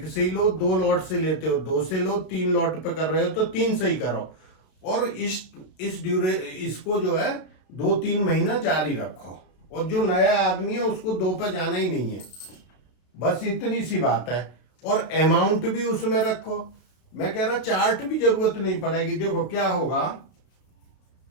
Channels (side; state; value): right; late; 33 ms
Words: से ही लो, 2 लॉट से लेते हो 2 से लो, 3 लॉट पे कर रहे हो तो 3 से ही करो। और इसको जो है 2-3 महीना जारी रखो। और जो नया आदमी है उसको 2 पे जाना ही नहीं है, बस इतनी सी बात है। और अमाउंट भी उसमें रखो। मैं कह रहा चार्ट भी जरूरत नहीं पड़ेगी। देखो क्या होगा